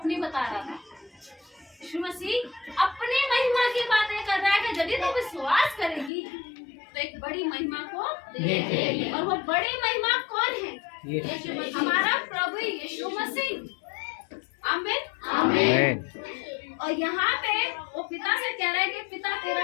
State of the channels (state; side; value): drops out; right; at 6.1 s